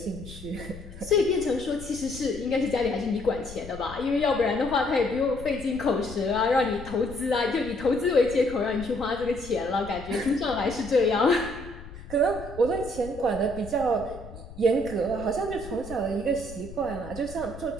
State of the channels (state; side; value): noise; left; rumble, 14 dB below the sound